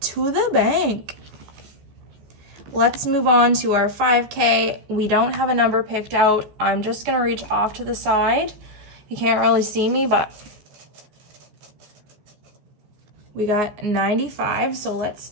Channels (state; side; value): late; left; 14 ms